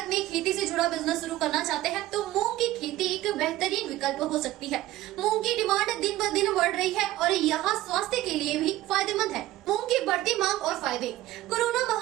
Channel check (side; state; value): left; quieter; 15.8 dB